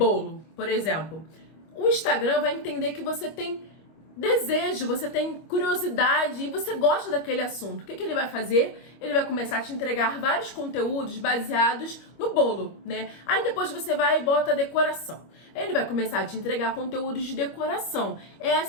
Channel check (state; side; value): late; right; 25 ms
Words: por exemplo, o Instagram vai entender que você tem desejo, você tem curiosidade e você gosta daquele assunto. O que ele vai fazer? Ele vai começar a te entregar vários conteúdos baseados no bolo, né? Aí depois você vai e bota a decoração. Ele vai começar a te entregar conteúdos de decoração. É